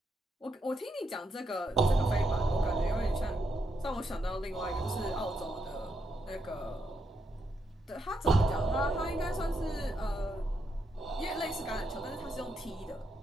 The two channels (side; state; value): both; normal; correlation 0.80